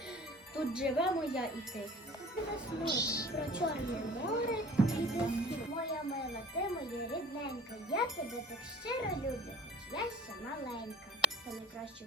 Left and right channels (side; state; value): both; normal; correlation 0.46